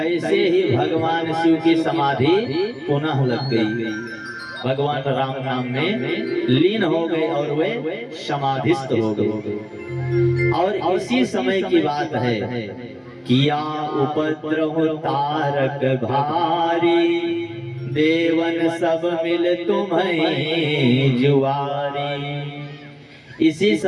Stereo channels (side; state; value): both; identical; correlation 1.00